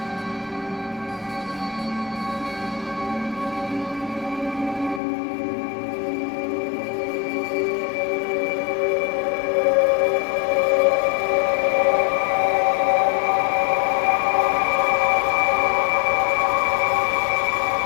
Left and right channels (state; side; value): drops out; right; at 5.0 s